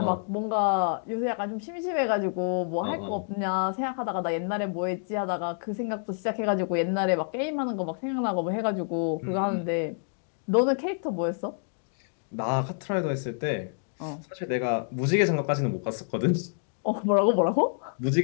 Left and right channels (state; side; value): silent; right; digital silence